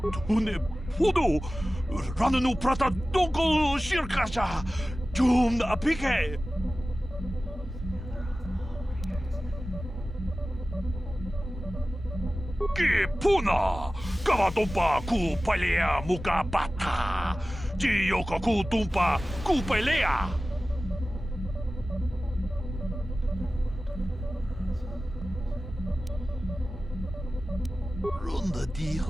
Tune pudu. Rananu prata donko shirkasha. Jum apike. Puna! Kavatumpa ku palea muka bata! Jiyoka ku tumpa ku pelea! Runda di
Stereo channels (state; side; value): normal; both; correlation 0.96